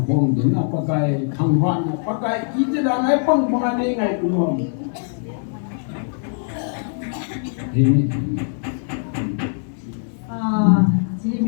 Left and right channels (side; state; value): right; silent; digital silence